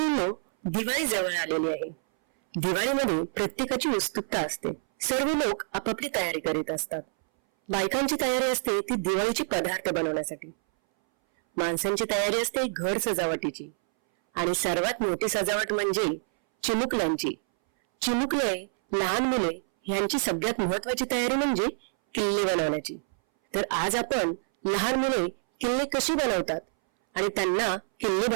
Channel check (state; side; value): silent; left; 60 dB below the other